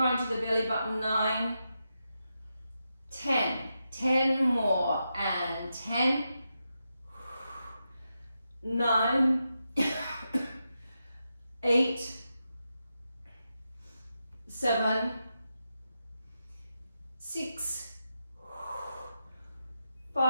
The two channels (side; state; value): both; inverted; correlation -0.87